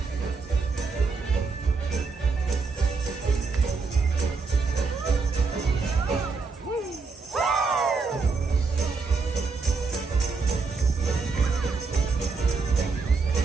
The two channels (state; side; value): quieter; left; 4.5 dB